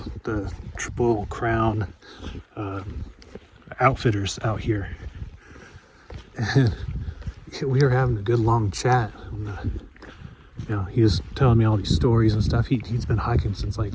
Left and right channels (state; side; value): identical; both; correlation 1.00